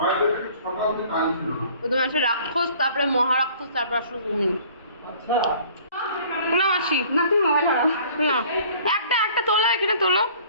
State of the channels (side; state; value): both; inverted; correlation -0.52